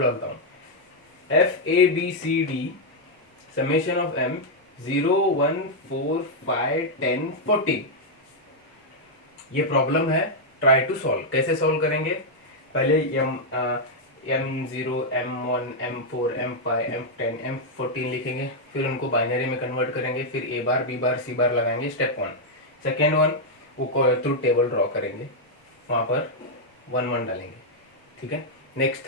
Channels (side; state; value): both; normal; correlation -0.03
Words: हूँ। F A B C D summation of M 0 1 4 5 10 14। ये प्रॉब्लम है, ट्राई टू सॉल्व। कैसे सॉल्व करेंगे, पहले m0 m1 m4 m5 m10 m14 लिखेंगे, फिर उनको बाइनरी में कन्वर्ट करेंगे, फिर ए bar B bar C bar लगाएंगे, स्टेप 1। सेकेंड वन, वो ट्रूथ टेबल ड्रॉ करेंगे, वहाँ पर 1 1 डालेंगे, ठीक है। Next